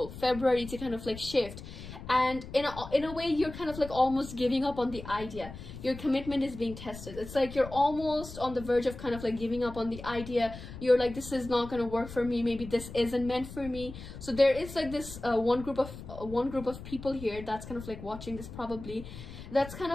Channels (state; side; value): noise; left; rumble, 12 dB below the sound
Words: February to kind of like shift, and in a way you're kind of like almost giving up on the idea. Your commitment is being tested. It's like you're almost on the verge of kind of like giving up on the idea. You're like, this is not going to work for me, maybe this isn't meant for me. So there is like this one group of people here that's kind of like watching this probably, that's kind